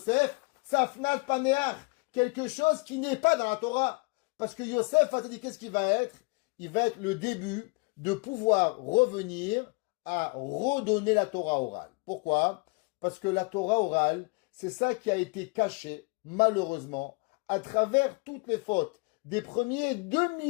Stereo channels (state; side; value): quieter; right; 29.6 dB